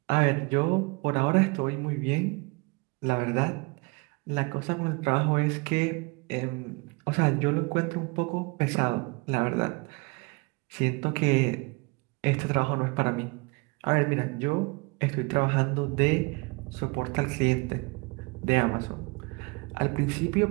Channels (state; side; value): quieter; left; 28.6 dB